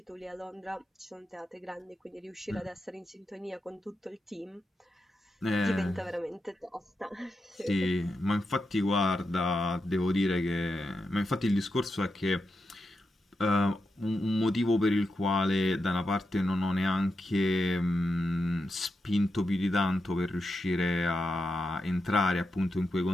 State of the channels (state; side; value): normal; both; correlation 0.87